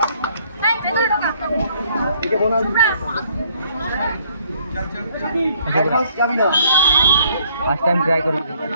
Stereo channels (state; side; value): inverted; both; correlation -0.64